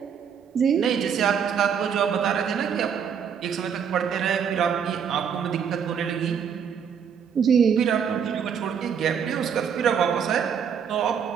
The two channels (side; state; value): left; quieter; 7.5 dB